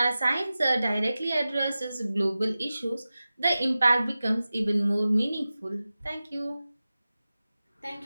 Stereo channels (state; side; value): inverted; both; correlation -0.95